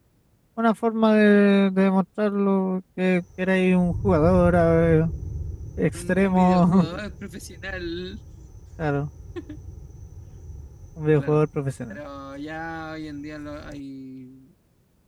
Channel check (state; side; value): identical; both; correlation 1.00